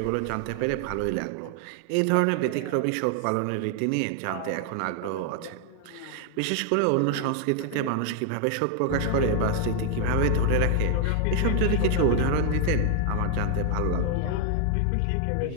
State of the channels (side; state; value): both; different; correlation 0.00